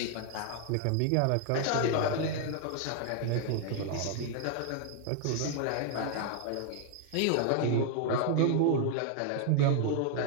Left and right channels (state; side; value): different; both; correlation 0.00